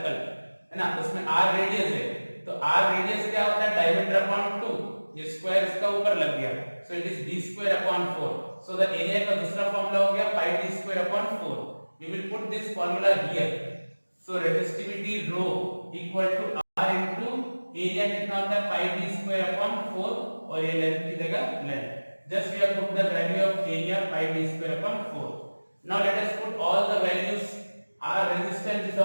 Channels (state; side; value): inverted; both; correlation -1.00